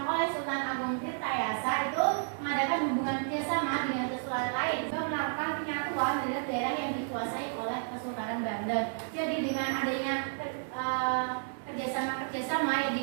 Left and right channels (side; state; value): left; silent; digital silence